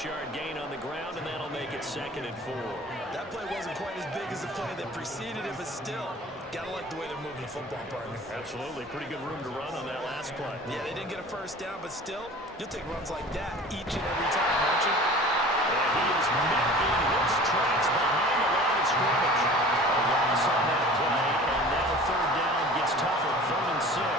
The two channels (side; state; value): both; normal; correlation 0.43